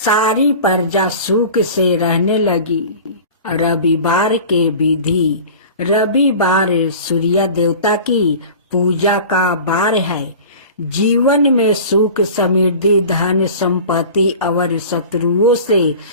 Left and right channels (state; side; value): inverted; both; correlation -0.39